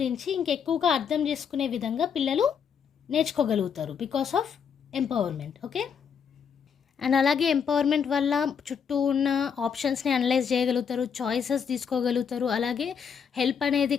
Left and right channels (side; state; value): right; quieter; 7.1 dB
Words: ఇంకెక్కువగా అర్థం చేసుకునే విధంగా పిల్లలు నేర్చుకోగలుగుతారు because of empowerment. Okay, and అలాగే ఎంపవర్మెంట్ వల్ల చుట్టూ ఉన్న ఆప్షన్స్ని అనలైజ్ చేయగలుగుతారు, చాయిసెస్ తీసుకోగలుగుతారు. అలాగే హెల్ప్ అనేది